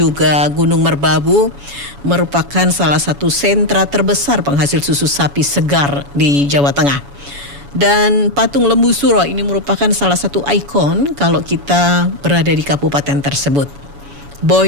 Gunung Merbabu, merupakan salah satu sentra terbesar penghasil susu sapi segar di Jawa Tengah. Dan patung Lembu Suro ini merupakan salah satu ikon kalau kita berada di kabupaten tersebut.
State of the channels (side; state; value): left; late; 7.1 ms